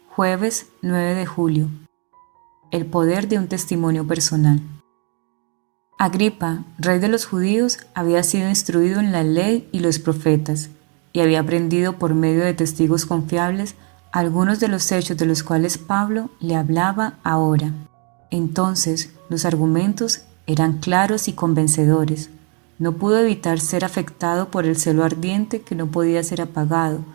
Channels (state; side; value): quieter; left; 37.6 dB